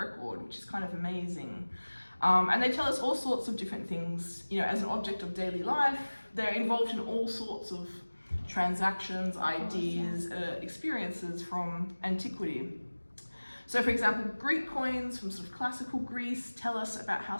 which is kind of amazing. And they tell us all sorts of different things. You know, as an object of daily life, they're involved in all sorts of transactions, ideas, experiences from antiquity. So, for example, Greek coins from sort of classical Greece tell us about how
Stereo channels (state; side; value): inverted; both; correlation -1.00